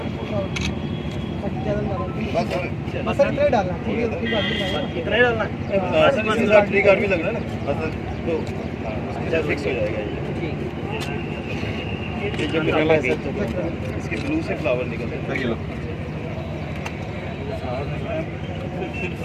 बस इतना डालना, इतना ही डालना ट्री कार्ड भी लगना है ना, बस तो फिक्स हो जाएगा ये जब निकला है इसके ब्लू से फ्लावर निकलते हैं।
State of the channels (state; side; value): identical; both; correlation 1.00